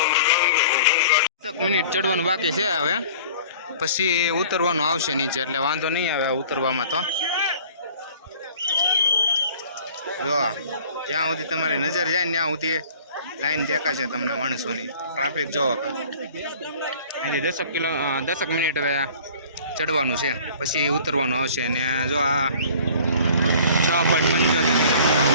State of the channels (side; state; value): both; inverted; correlation -0.48